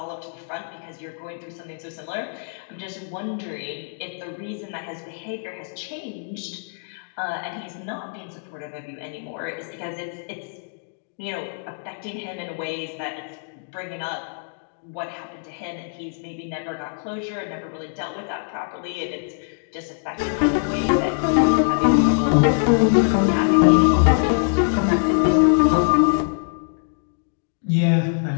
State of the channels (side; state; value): right; silent; digital silence